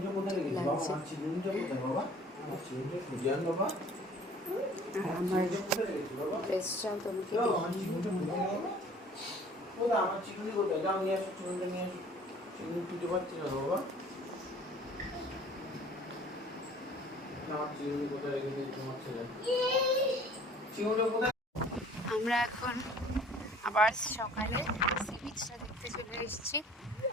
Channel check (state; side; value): normal; both; correlation 0.51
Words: আমার ড্রেসটাও তোমাকে আমরা এখন আবার সকালে সি বিচটা দেখতে চলে এসেছি।